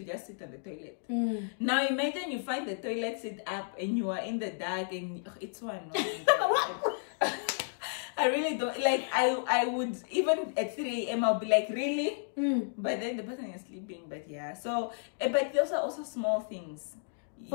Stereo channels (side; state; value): right; silent; digital silence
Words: just sit on the toilet. Now imagine you find the toilet seat up and you are in the dark and it's so annoying. I really don't like. I would even at 3 a.m. I'll be like, really? But then the person is sleeping. But yeah, so but those are also small things.